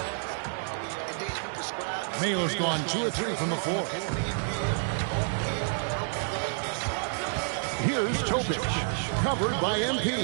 Mayo's gone 2 or 3 from the floor. Here's Topic, covered by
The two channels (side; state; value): left; silent; digital silence